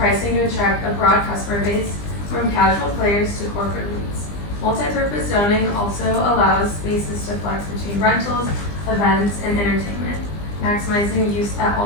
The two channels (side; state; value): right; late; 20 ms